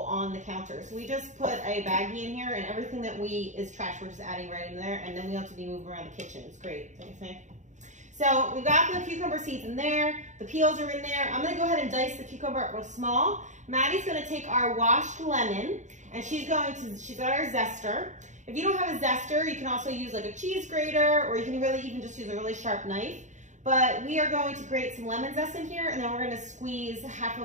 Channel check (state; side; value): late; left; 0.35 ms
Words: on the counter. So we just put a baggie in here, and everything that is trash, we're just adding right in there, and then we don't have to be moving around the kitchen. It's great, don't you think? So we've got the cucumber seeds in there, the peels are in there. I'm gonna go ahead and dice the cucumber up real small. Maddie's gonna take our washed lemon, and she's got our zester. If you don't have a zester, you can also use like a cheese grater, or you can really even just use a really sharp knife. But we are going to grate some lemon zest in here, and then we're gonna squeeze half